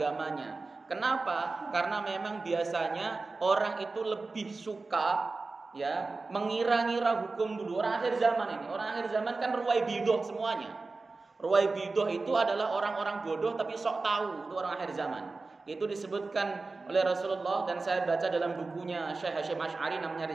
Kenapa? Karena memang biasanya orang itu lebih suka ya mengira-ngira hukum dulu. Orang akhir zaman ini, orang akhir zaman kan ruwaibidah semuanya. Ruwaibidah itu adalah orang-orang bodoh tapi sok tahu, itu orang akhir zaman. Itu disebutkan oleh Rasulullah dan saya baca dalam bukunya Syekh Hasyim Asy'ari namanya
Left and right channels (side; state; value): left; quieter; 3.7 dB